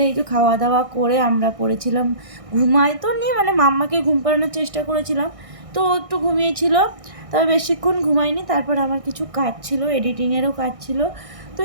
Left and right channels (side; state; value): left; late; 1.6 ms